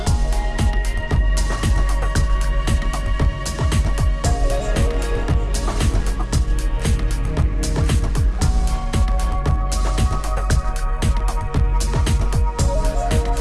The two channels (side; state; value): both; identical; correlation 1.00